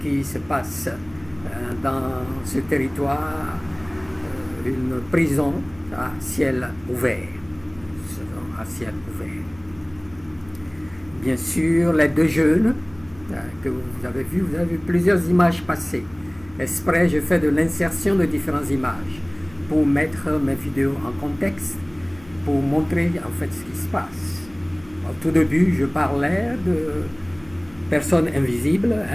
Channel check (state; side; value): noise; left; hum, 23 dB below the sound